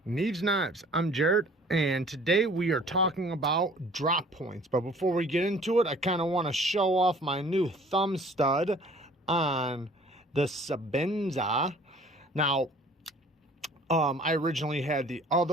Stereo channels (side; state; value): both; normal; correlation 0.52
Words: Neeves Knives. I'm Jared, and today we are talking about drop points. But before we get into it, I kind of want to show off my new thumb stud on the Sabenza. Now, I originally had the